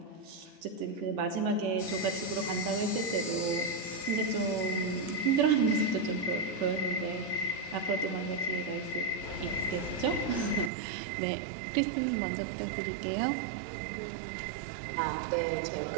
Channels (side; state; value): left; drops out; at 10.7 s